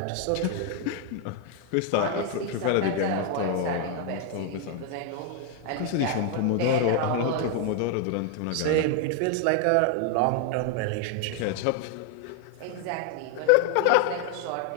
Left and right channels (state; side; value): different; both; correlation 0.01